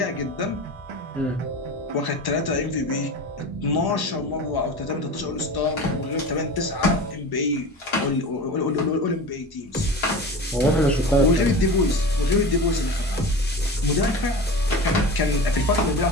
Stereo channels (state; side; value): normal; both; correlation 0.31